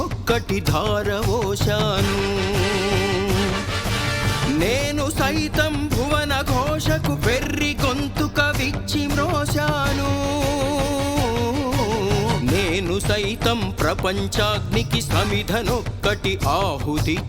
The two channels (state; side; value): identical; both; correlation 1.00